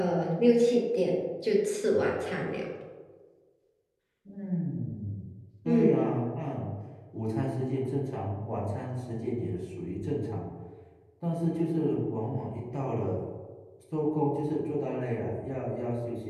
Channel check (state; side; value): identical; both; correlation 1.00